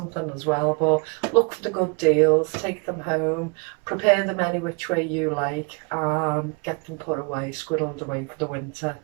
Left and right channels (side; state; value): left; quieter; 32.9 dB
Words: as well, but look for the good deals, take them home, prepare them any which way you like, get them put away, squirreled away for the winter.